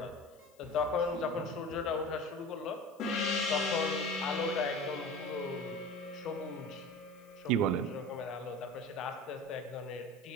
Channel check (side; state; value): left; noise; hiss, 29 dB below the sound